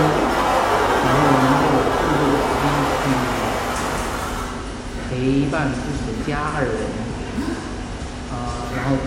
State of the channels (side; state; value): both; identical; correlation 1.00